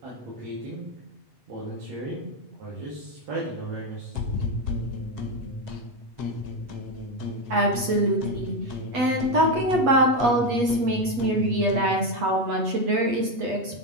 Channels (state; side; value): late; left; 8.3 ms